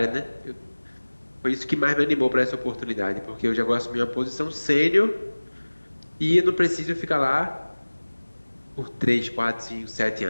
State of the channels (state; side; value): inverted; both; correlation -1.00